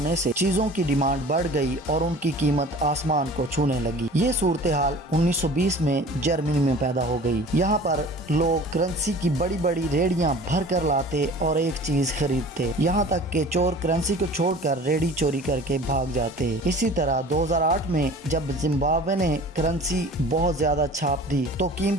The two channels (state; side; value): normal; both; correlation 0.43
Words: سے چیزوں کی ڈیمانڈ بڑھ گئی اور ان کی قیمت آسمان کو چھونے لگی۔ یہ صورتحال 1920 میں جرمنی میں پیدا ہو گئی۔ یہاں پر لوگ کرنسی کی بڑی بڑی ریڑیاں بھر کر لاتے اور ایک چیز خریدتے، یہاں تک کہ چور کرنسی کو چھوڑ کر ریڑی چوری کر کے بھاگ جاتے۔ اسی طرح 2008 میں جب زمبابوے نے کرنسی بہت زیادہ چھاپ دی تو